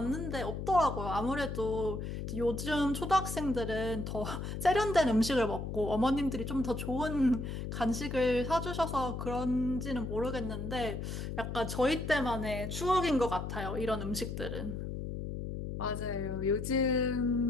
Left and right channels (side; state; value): left; noise; hum, 5 dB below the sound